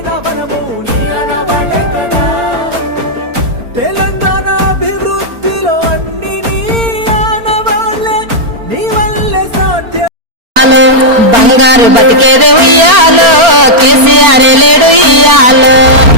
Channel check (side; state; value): left; late; 4.4 ms